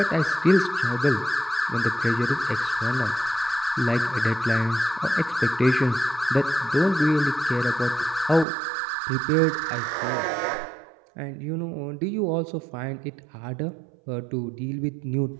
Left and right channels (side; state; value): left; drops out; at 8.5 s